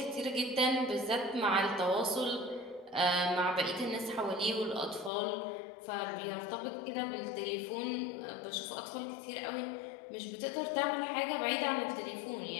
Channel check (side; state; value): right; drops out; at 5.1 s